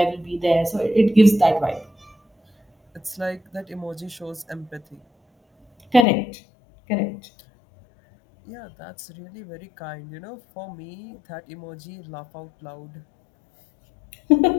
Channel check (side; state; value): right; drops out; at 6.1 s